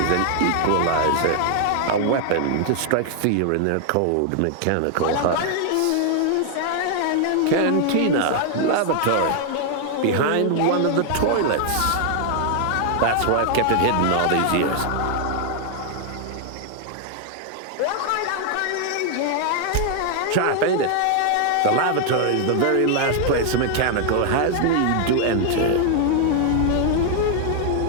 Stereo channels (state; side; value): different; both; correlation 0.00